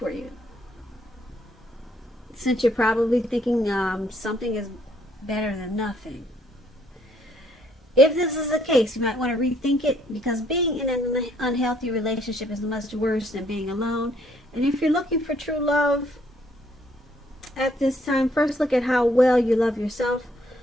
you, since you're probably thinking something is better than nothing. If this is the case, you might want to rethink it, because being in an unhealthy relationship is much worse than being alone. And if you're looking for true love at this time, first look at how well you love yourself.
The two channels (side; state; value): both; normal; correlation 0.67